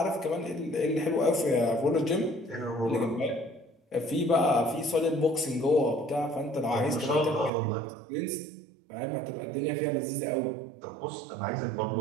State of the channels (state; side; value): drops out; left; at 7.5 s